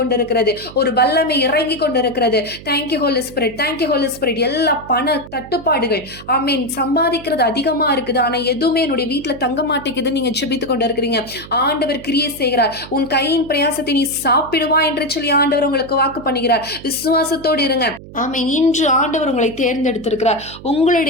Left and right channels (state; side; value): noise; right; hum, 16 dB below the sound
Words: ஒரு வல்லமை இறங்கி கொண்டிருக்கிறது. Thank you holy spirit, thank you holy spirit. எல்லா பண தட்டுப்பாடுகள், ஆமீன், சம்பாதிக்கிறது அதிகமா இருக்குது, ஆனா எதுவுமே என்னுடைய வீட்டுல தங்க மாட்டேங்குது. நீங்க ஜெபித்து கொண்டு இருக்கிறீங்க. ஆண்டவர் கிரியை செய்கிறார். உன் கையின் பிரயாசத்தை நீ சாப்பிடுவா என்று சொல்லி ஆண்டவர் உங்களுக்கு வாக்கு பண்ணுகிறார். விசுவாசத்தோடு இருங்க. ஆமென். இன்று ஆண்டவர் உங்களை தேர்ந்தெடுத்திருக்கிறார்.